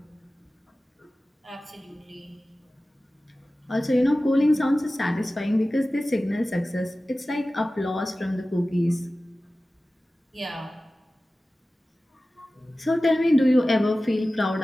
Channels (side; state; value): both; normal; correlation 0.96